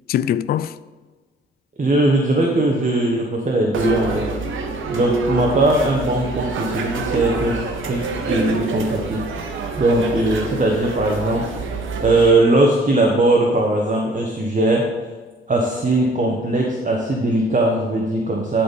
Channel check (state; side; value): normal; both; correlation 0.55